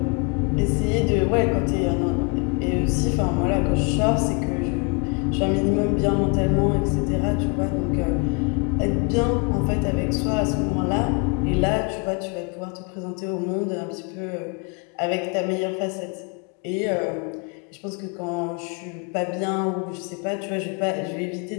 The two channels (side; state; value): right; quieter; 33.7 dB